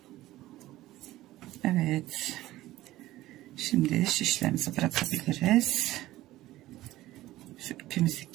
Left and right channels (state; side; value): quieter; left; 16.0 dB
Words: Evet. Şimdi şişlerimizi bırakabiliriz. Şu ipimizi